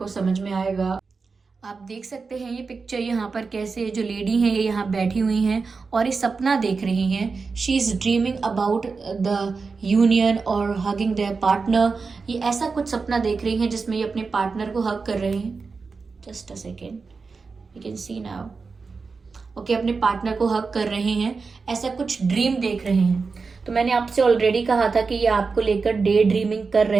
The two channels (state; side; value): quieter; left; 4.6 dB